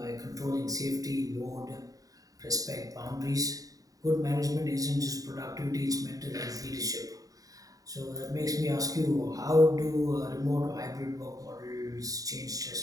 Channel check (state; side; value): late; left; 0.17 ms